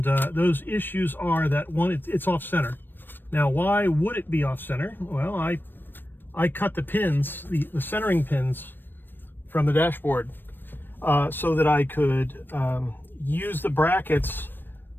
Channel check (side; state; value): right; late; 0.095 ms